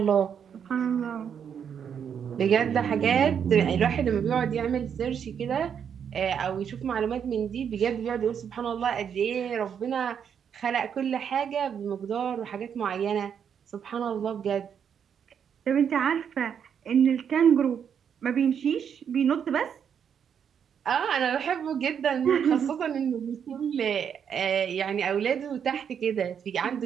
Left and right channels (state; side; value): quieter; left; 7.8 dB